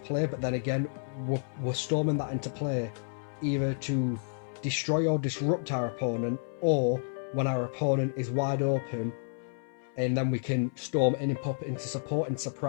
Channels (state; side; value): silent; right; 57 dB below the other